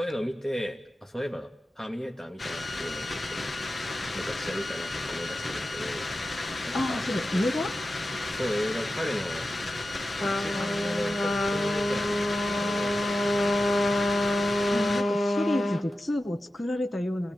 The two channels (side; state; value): both; normal; correlation 0.93